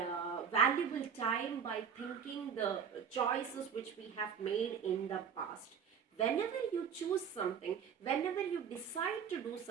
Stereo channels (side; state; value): left; quieter; 7.3 dB